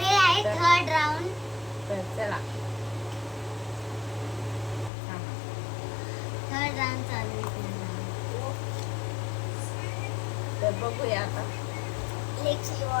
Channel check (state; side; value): drops out; right; at 4.9 s